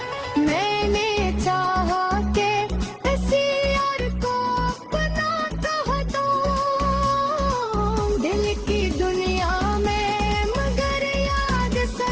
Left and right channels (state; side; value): identical; both; correlation 1.00